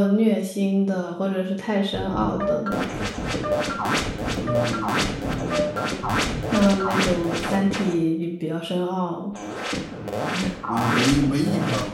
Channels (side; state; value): both; identical; correlation 1.00